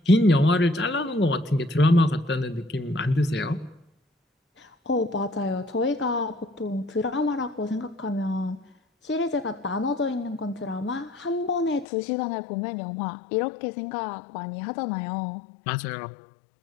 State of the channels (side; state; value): right; drops out; at 11.9 s